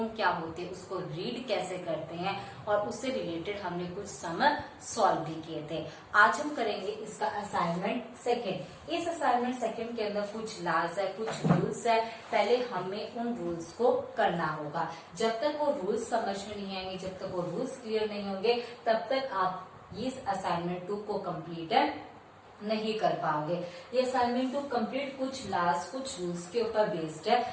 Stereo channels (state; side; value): identical; both; correlation 1.00